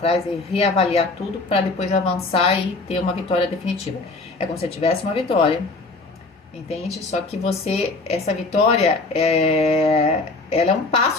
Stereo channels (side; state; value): right; quieter; 3.4 dB